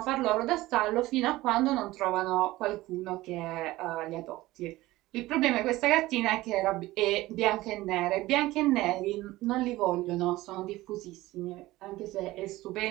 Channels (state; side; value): quieter; left; 18.0 dB